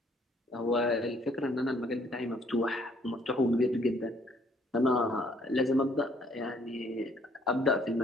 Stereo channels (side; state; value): both; normal; correlation 0.64